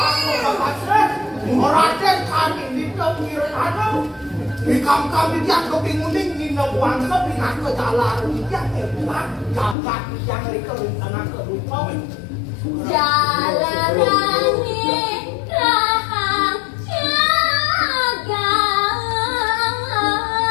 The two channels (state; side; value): drops out; right; at 9.8 s